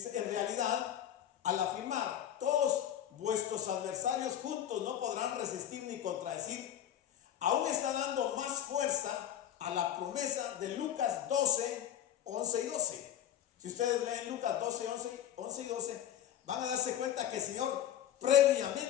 en realidad, al afirmar, todos vuestros adversarios juntos no podrán resistir ni contradecir, aún está dando más fuerza a la promesa de Lucas 12, 11 y 12. Si ustedes leen Lucas 12, 11 y 12, van a darse cuenta que el Señor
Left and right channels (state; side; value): quieter; right; 10.7 dB